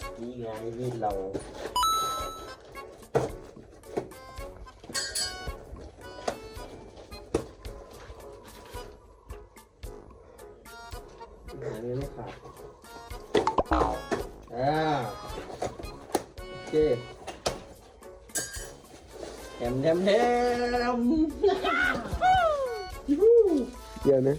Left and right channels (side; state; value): both; identical; correlation 1.00